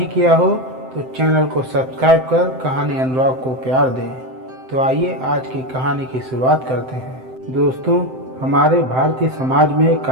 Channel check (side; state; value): left; late; 7.8 ms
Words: किया हो तो चैनल को सब्सक्राइब कर कहानी अनुराग को प्यार दें। तो आइए आज की कहानी की शुरुआत करते हैं। दोस्तों, हमारे भारतीय समाज में